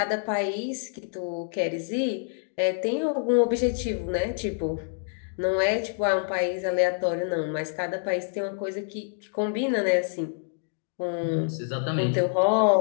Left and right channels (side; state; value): right; silent; digital silence